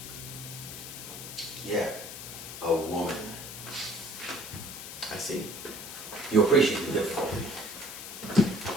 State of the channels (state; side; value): noise; left; hiss, 10 dB below the sound